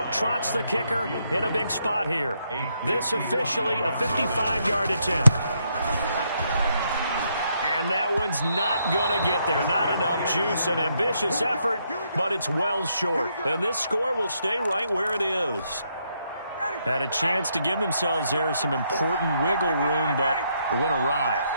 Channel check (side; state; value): both; inverted; correlation -0.76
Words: trots the kicker in a big spot here. This officially a 55-yard attempt. And that one's not going to get there. Not enough juice. An ambitious effort, but it's well short. And this score will stay right where it is. Had a chance to give themselves there some important wiggle room, but went awry.